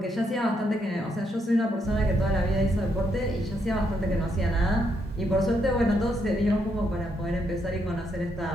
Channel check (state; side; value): normal; both; correlation 0.77